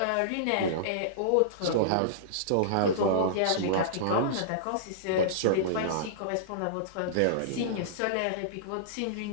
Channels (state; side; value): different; both; correlation -0.03